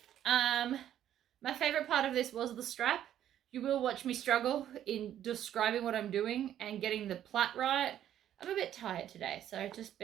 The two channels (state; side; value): quieter; left; 11.1 dB